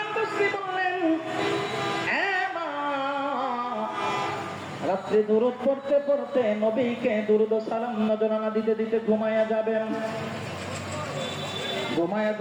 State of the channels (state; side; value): identical; both; correlation 1.00